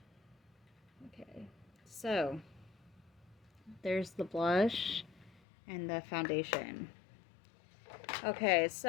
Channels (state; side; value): drops out; right; at 5.4 s